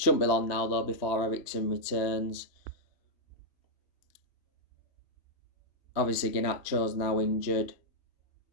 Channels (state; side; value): late; right; 3.1 ms